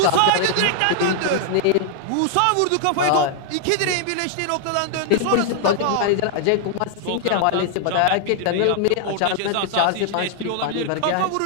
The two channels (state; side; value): different; both; correlation 0.00